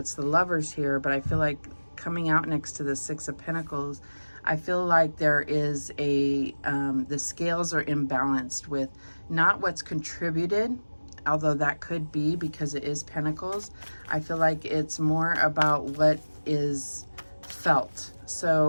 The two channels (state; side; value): inverted; both; correlation -1.00